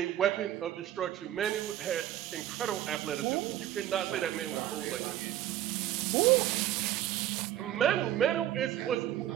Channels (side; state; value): left; quieter; 12.5 dB